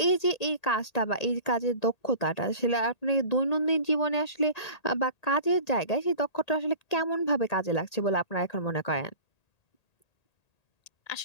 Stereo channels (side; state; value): right; late; 1.8 ms